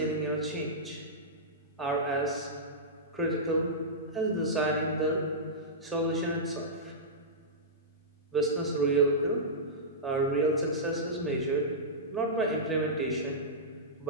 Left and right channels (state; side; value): normal; both; correlation -0.14